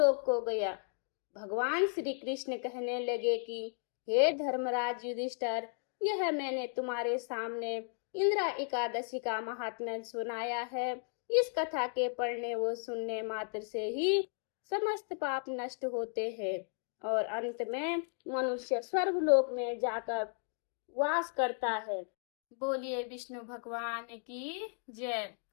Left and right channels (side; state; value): right; silent; 55 dB below the other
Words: को गया। भगवान श्री कृष्ण कहने लगे कि हे धर्मराज युधिष्ठिर, यह मैंने तुम्हारे सामने इंदिरा एकादशी का महात्म्य सुनाया है। इस कथा के पढ़ने व सुनने मात्र से ही समस्त पाप नष्ट होते हैं और अंत में मनुष्य स्वर्ग लोक में जाकर वास करता है। बोलिए विष्णु भगवान की जय।